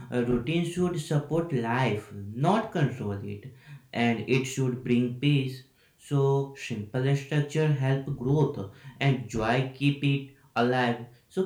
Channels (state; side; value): identical; both; correlation 1.00